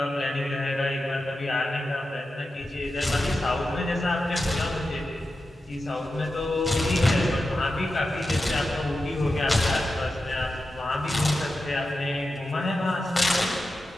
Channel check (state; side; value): normal; both; correlation 0.91